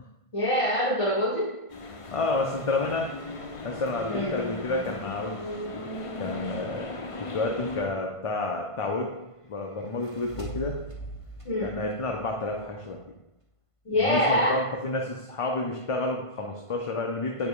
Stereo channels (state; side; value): late; right; 1.5 ms